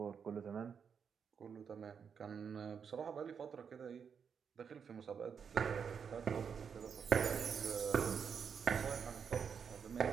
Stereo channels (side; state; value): left; quieter; 6.8 dB